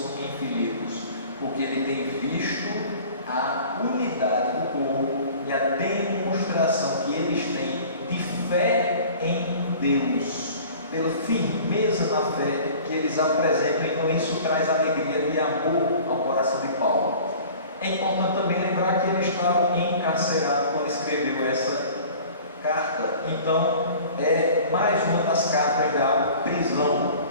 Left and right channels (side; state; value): both; inverted; correlation -0.45